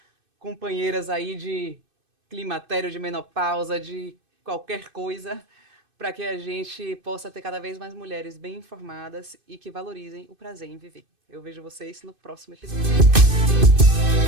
companheiras aí de climatério, de menopausa, de qualquer coisa, para que a gente possa ter cada vez mais mulheres bem informadas e que valorizem o prazer em viver. Eu vejo vocês no próximo episódio.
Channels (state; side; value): late; left; 2.6 ms